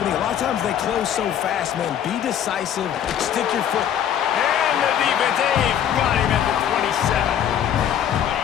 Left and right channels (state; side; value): quieter; right; 9.7 dB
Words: A lot of sometimes they close so fast, man. Be decisive. Stick your foot. And the defense, they've got him at the 27.